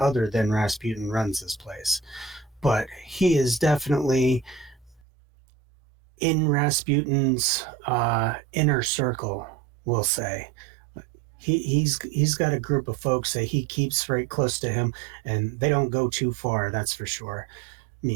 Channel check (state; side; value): drops out; left; at 5.0 s